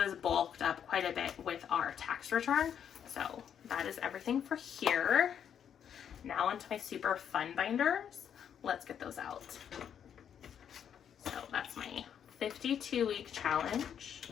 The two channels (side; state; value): right; quieter; 8.6 dB